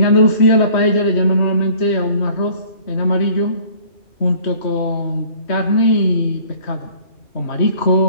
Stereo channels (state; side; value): late; right; 3.1 ms